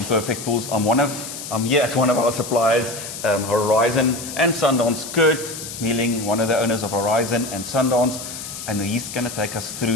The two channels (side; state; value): left; noise; hiss, 9 dB below the sound